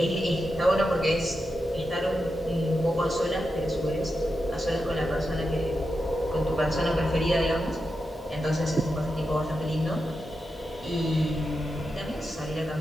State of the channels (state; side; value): normal; both; correlation 0.88